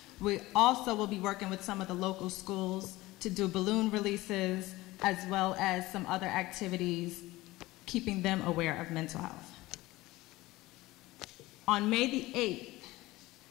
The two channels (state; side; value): quieter; right; 19.0 dB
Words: We also will be working with some of the local schools to do balloon releases, as well as some other activities, keeping them aware of mental health. On May the 8th,